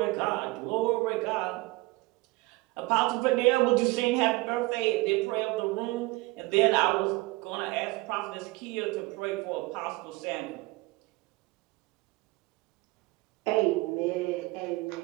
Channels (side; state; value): left; quieter; 22.5 dB